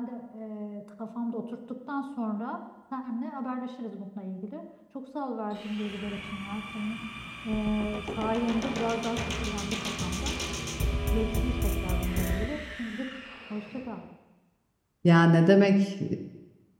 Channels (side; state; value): both; identical; correlation 1.00